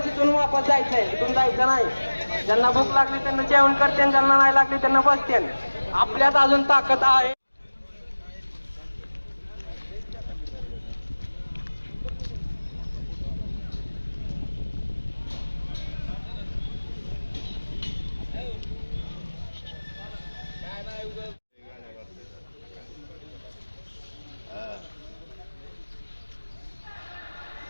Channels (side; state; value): both; inverted; correlation -1.00